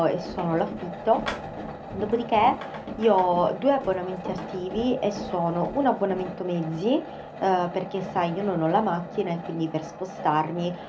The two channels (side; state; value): both; identical; correlation 1.00